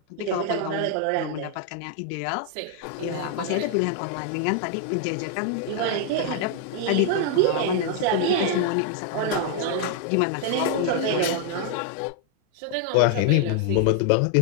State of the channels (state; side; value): different; both; correlation 0.00